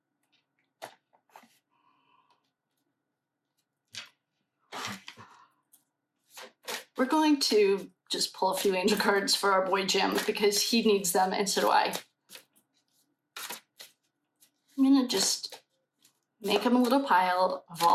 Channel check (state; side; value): identical; both; correlation 1.00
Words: just pull a few angel cards for our boy Jim because he needs them and so do I. I'm gonna just make him a little pile of